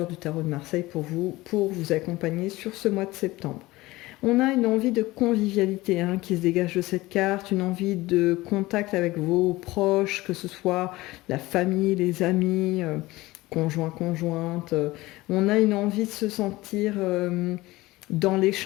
du tarot de Marseille pour vous accompagner sur ce mois de septembre. On a une envie de convivialité qui se dégage de cette carte, une envie de contact avec vos proches, que ce soit la famille, les amis, conjoints, conjointes. On a une envie de se sentir dans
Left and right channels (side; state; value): right; quieter; 19.4 dB